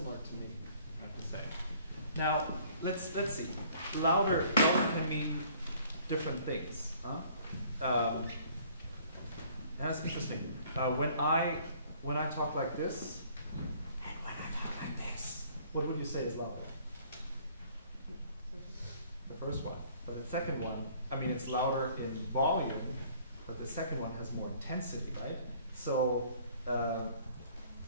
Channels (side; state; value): both; inverted; correlation -0.56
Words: to me, I have to say. Now, let's see. Louder can mean different things. And that's interesting. When I talk like this, and when I talk like this, what would you say is louder? The first one. But the second one, I mean, it's louder in volume, but the second one has more intensity, right? So